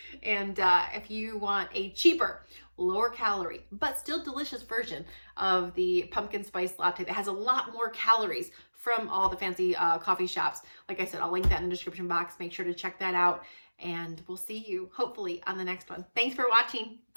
And if you want a cheaper, lower calorie, but still delicious version of the pumpkin spice latte that has a lot more calories from all the fancy coffee shops, like I said, I'll link that in the description box. Make sure to check that out. And we'll see you, hopefully, on the next one. Thanks for watching.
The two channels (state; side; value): inverted; both; correlation -1.00